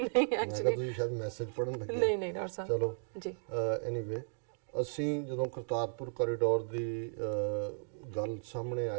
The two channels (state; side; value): silent; left; digital silence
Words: ਐਕਚੁਅਲੀ ਤੁਸੀਂ ਸ਼ਾਇਦ ਮੈਸੇਜ ਪੜਨ ਲੱਗੇ। ਨਹੀਂ ਡਾਕਟਰ ਸਾਹਿਬ ਚਲੋ ਜੀ। ਐਨੀਵੇ ਅਸੀਂ ਜਦੋਂ ਕਰਤਾਰਪੁਰ ਕੋਰੀਡੋਰ ਦੀ ਗੱਲ ਸਾਹਮਣੇ